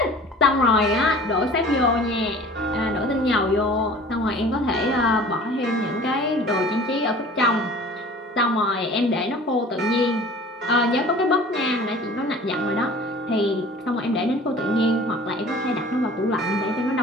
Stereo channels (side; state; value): both; normal; correlation 0.45